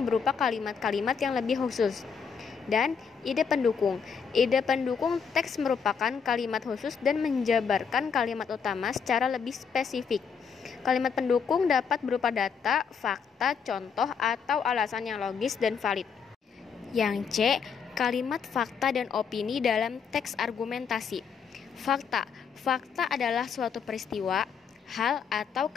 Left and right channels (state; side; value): quieter; right; 6.4 dB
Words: berupa kalimat-kalimat yang lebih khusus. Dan ide pendukung. Ide pendukung teks merupakan kalimat khusus dan menjabarkan kalimat utama secara lebih spesifik. Kalimat pendukung dapat berupa data, fakta, contoh, atau alasan yang logis dan valid. Yang C. Kalimat fakta dan opini dalam teks argumentasi. Fakta. Fakta adalah suatu peristiwa, hal, atau